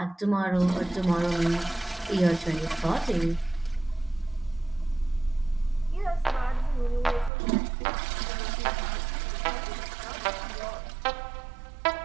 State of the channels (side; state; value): left; drops out; at 7.3 s